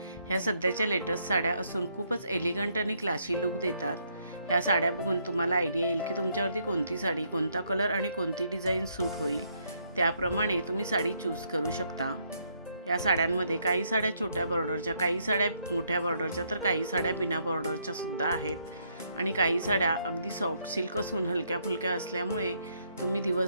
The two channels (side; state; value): both; inverted; correlation -0.72